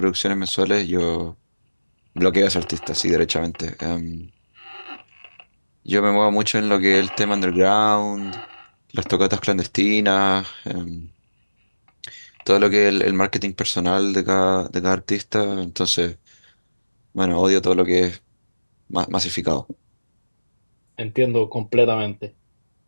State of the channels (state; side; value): inverted; both; correlation -1.00